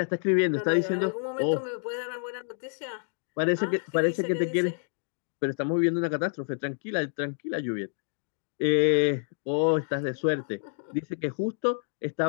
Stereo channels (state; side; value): silent; right; digital silence